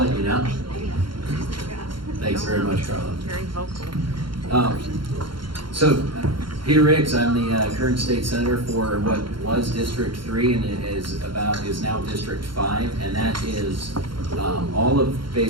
you know. Thanks very much, Carla. Very vocal. Peter Riggs, I'm the current state senator for what was District 3 and is now District 5, and that is all of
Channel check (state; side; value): late; left; 0.73 ms